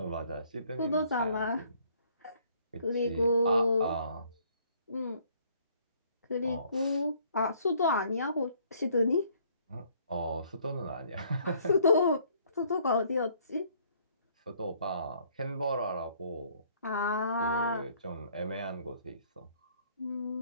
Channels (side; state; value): both; inverted; correlation -0.62